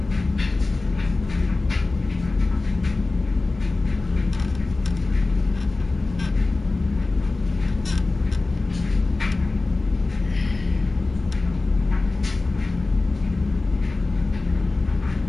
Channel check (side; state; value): right; quieter; 3.4 dB